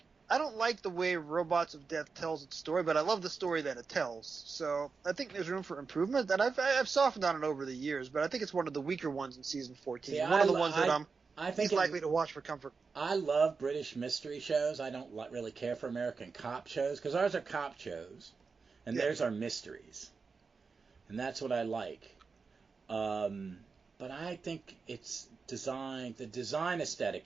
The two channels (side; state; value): left; quieter; 4.8 dB